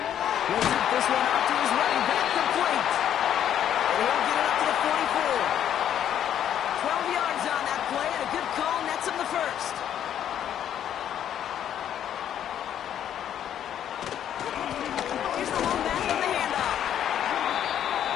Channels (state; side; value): quieter; right; 10.1 dB